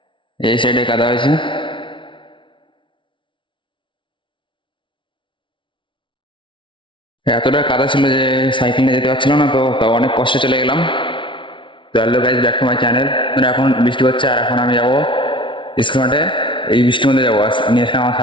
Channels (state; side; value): late; right; 0.24 ms